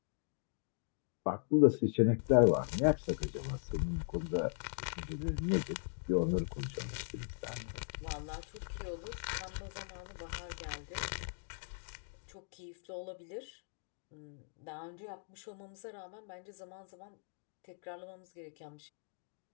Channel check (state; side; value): silent; right; digital silence